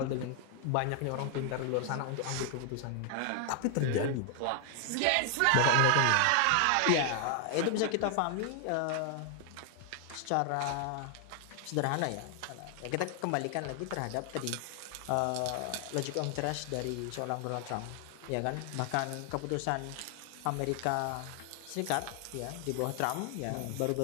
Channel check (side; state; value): both; different; correlation 0.00